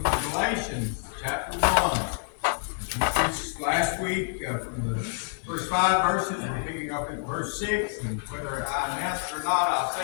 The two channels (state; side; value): silent; right; digital silence